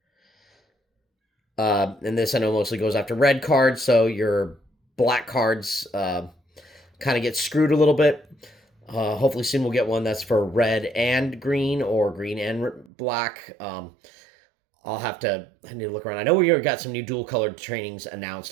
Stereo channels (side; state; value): left; drops out; at 12.9 s